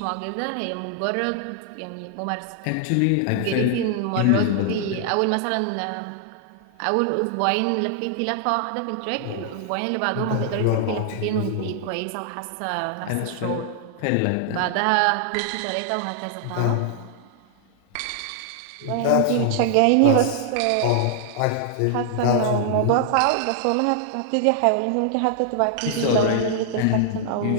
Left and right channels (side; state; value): both; different; correlation -0.01